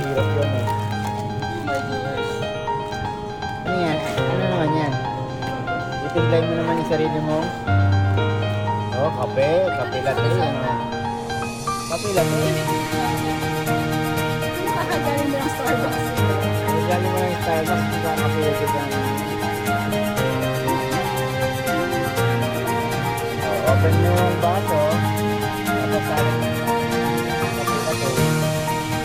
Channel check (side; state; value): both; identical; correlation 1.00